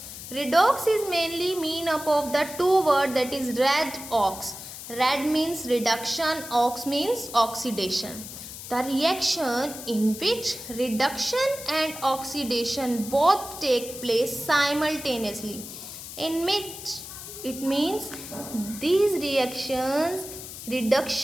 Redox is mainly made up of the two words, that is red ox. Red means reduction, ox means oxidation. The reaction in which reduction and oxidation both take place simultaneously, in which it means these reactions,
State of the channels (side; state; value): left; noise; hiss, 11 dB below the sound